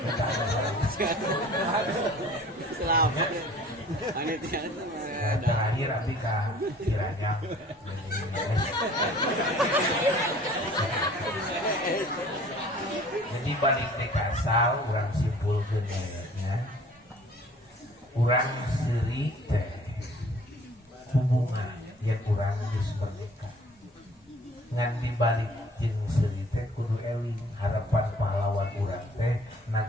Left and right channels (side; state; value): both; normal; correlation 0.51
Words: Selamat. Panitia terakhir abi ka Ciranyang. Jadi balik teh ka asal urang simpulkeun nya. Urang seuri teh hubungan yang urang geus bernikah. Ngan dibalik jeung seuri teh kudu eling harapan pahlawan urang teh